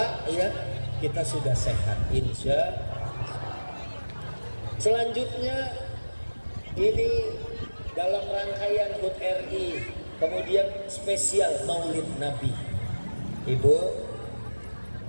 ya, kita sudah sehat insya. Selanjutnya ini dalam rangkaian HUT RI, kemudian spesial Maulid Nabi. Ibu,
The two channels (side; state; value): both; inverted; correlation -1.00